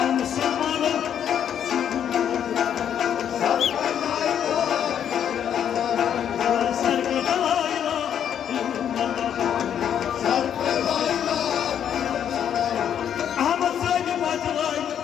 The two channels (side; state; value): right; quieter; 9.1 dB